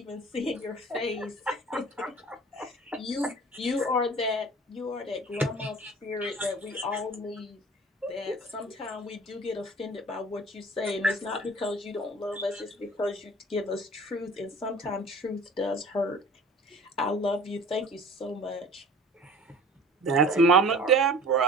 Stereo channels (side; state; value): both; normal; correlation 0.44